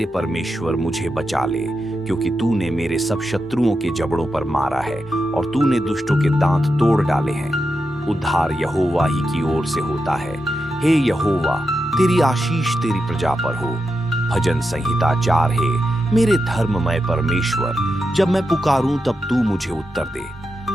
परमेश्वर मुझे बचा ले, क्योंकि तूने मेरे सब शत्रुओं के जबड़ों पर मारा है और तूने दुष्टों के दांत तोड़ डाले हैं। उद्धार यहोवा ही की ओर से होता है। हे यहोवा तेरी आशीष तेरी प्रजा पर हो। भजन संहिता 4। हे मेरे धर्ममय परमेश्वर, जब मैं पुकारूं तब तू मुझे उत्तर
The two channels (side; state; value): both; normal; correlation 0.87